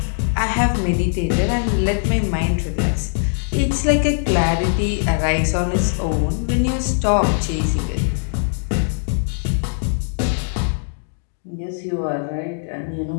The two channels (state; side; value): silent; right; digital silence